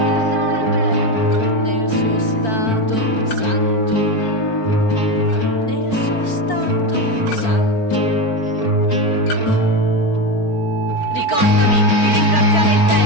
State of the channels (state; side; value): late; right; 4.5 ms